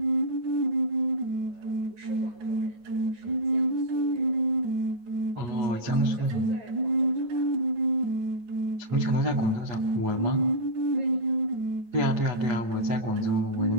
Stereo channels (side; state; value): left; late; 8.3 ms